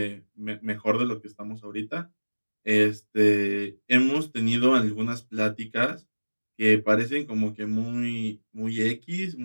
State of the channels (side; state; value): both; inverted; correlation -1.00